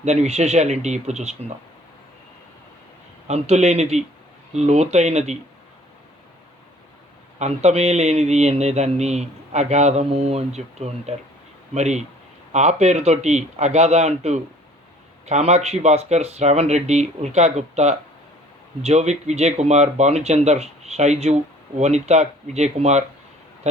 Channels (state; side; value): normal; both; correlation 0.53